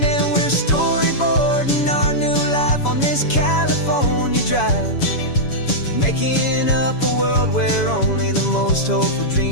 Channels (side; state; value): right; late; 7.1 ms